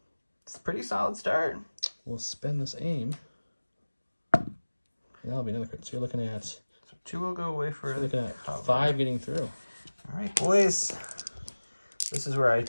It's a pretty solid start. We'll spend this aim. That'll be another crit. So you're looking at... So 2 will go away for... You're looking at 5 getting through. All right, boys. This is where I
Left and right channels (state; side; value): inverted; both; correlation -1.00